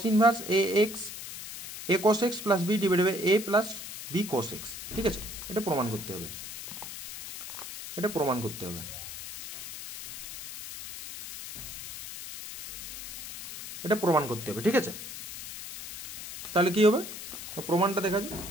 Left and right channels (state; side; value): noise; left; hiss, 10 dB below the sound